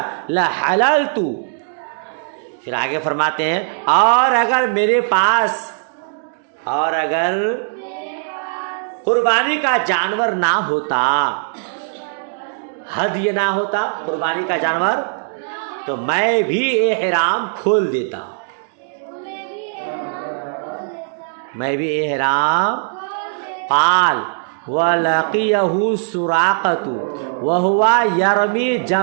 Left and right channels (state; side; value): silent; left; digital silence